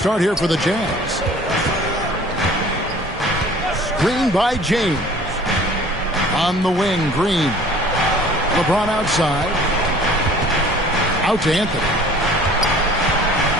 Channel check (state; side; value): normal; both; correlation 0.49